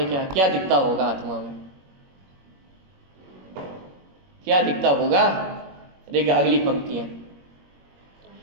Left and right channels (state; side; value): late; left; 21 ms